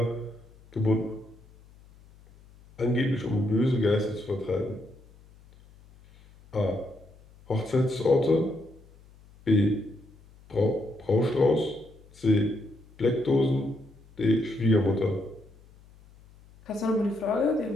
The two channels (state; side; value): noise; left; hum, 25 dB below the sound